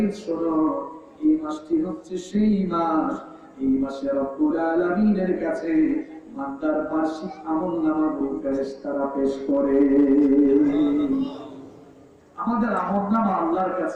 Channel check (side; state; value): both; identical; correlation 1.00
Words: শোনো, এই মাসটি হচ্ছে সেই মাস, এই মাসে রব্বুল আলামিনের কাছে বান্দার বার্ষিক আমলনামাগুলো ফেরেশতারা পেশ করে। আমাদের আমলনামা আল্লাহর